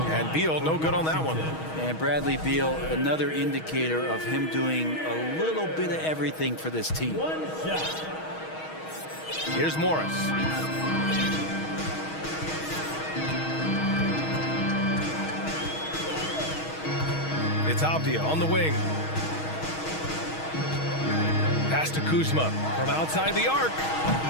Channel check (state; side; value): late; right; 6.3 ms